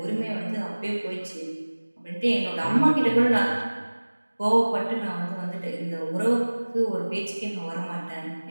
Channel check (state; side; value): inverted; both; correlation -1.00